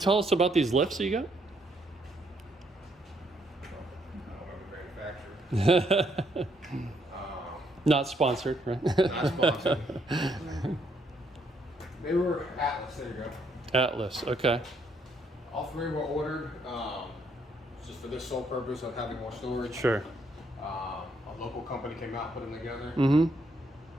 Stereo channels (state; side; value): normal; both; correlation 0.72